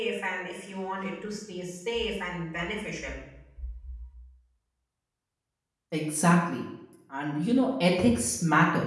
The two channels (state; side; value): identical; both; correlation 1.00